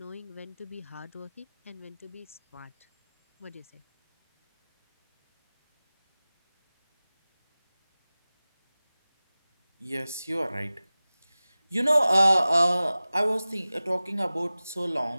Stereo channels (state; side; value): inverted; both; correlation -0.98